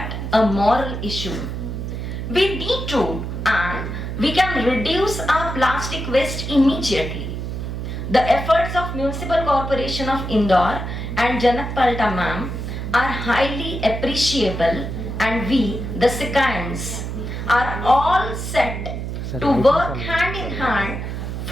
a moral issue. We need to and we can reduce our plastic waste immediately. The efforts of Municipal Corporation of Indore and Janak Palta ma'am are highly appreciable, and we, the Sikhans, are all set to work hand in hand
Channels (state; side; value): noise; right; hum, 5 dB below the sound